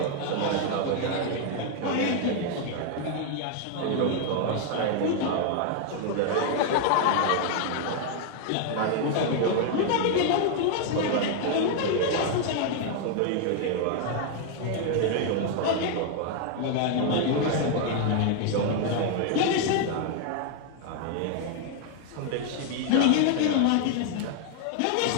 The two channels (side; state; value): both; different; correlation 0.00